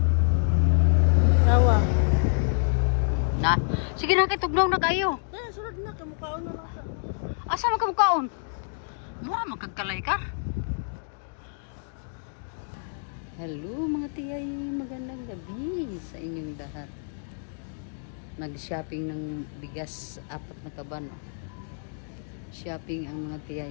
Kawa. Na, sige na kay tugnaw na kayo. Dala sulod na kay mukhaon na lang siya. Asa man ka mukaon? Mura magkagkalay ka. Hello mga tiyay, magandang gabi sa inyong lahat. Nag-shopping ng bigas, 4 na kaban. Oh. Shopping ang mga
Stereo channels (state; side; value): silent; right; digital silence